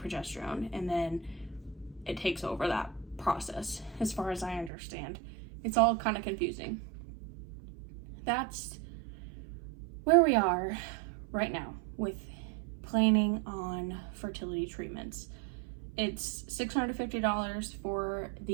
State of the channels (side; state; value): left; drops out; at 4.7 s